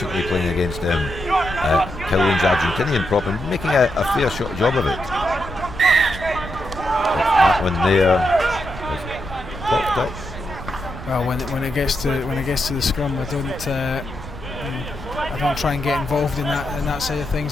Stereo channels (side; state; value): right; noise; rumble, 12 dB below the sound